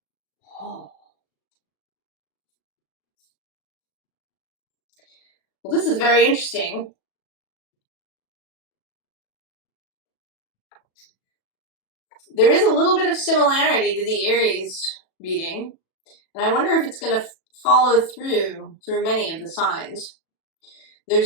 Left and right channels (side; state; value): right; late; 37 ms